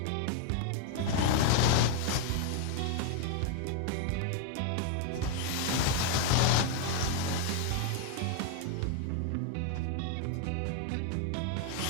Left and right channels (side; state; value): both; different; correlation 0.00